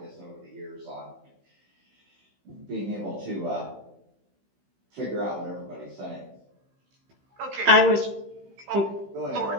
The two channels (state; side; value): late; left; 15 ms